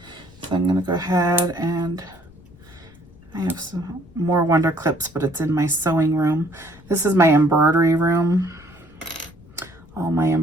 So I'm gonna go ahead and I have some more Wonder Clips, but it's in my sewing room. This is my embroidery room. All my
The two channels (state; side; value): noise; left; rumble, 25 dB below the sound